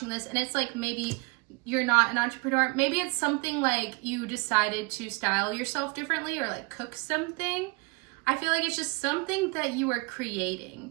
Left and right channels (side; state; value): left; quieter; 28.5 dB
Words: this and it's like maybe you're not an entrepreneur, maybe it's something like you decided to style yourself differently or like cook something. I feel like it's just something that you are